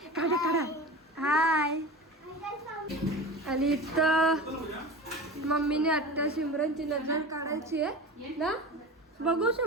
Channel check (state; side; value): normal; both; correlation 0.32